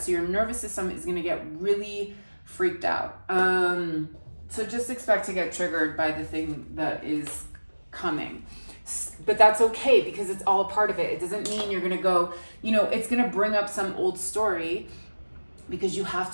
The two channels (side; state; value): both; inverted; correlation -1.00